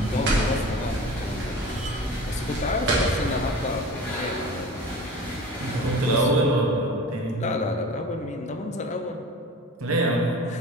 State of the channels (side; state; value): both; normal; correlation 0.37